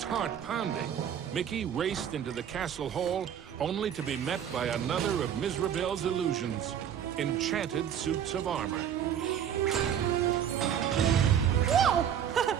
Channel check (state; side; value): quieter; left; 9.1 dB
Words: heart pounding, Mickey raced into the castle hall only to be met by another of Mizrabel's illusions, enchanted suits of armor. Whoa!